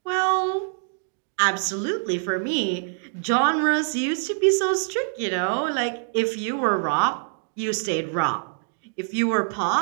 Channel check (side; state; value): left; silent; digital silence